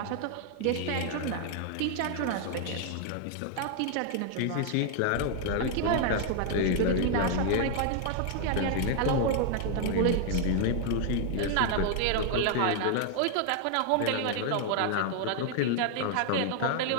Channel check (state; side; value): different; both; correlation 0.00